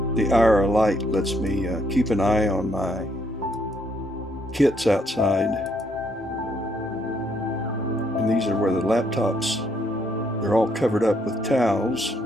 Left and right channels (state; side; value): normal; both; correlation 0.71